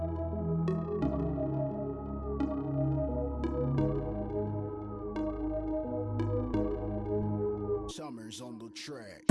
On the track.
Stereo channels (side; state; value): both; identical; correlation 1.00